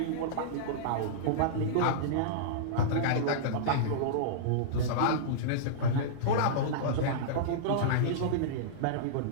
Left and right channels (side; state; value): both; different; correlation -0.03